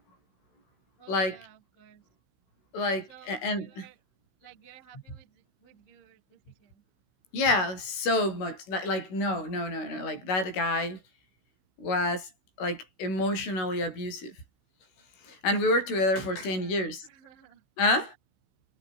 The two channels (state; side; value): late; right; 16 ms